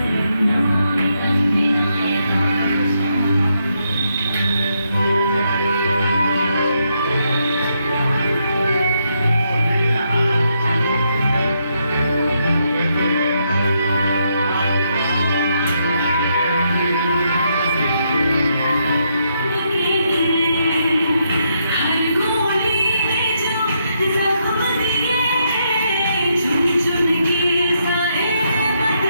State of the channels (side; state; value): both; inverted; correlation -0.78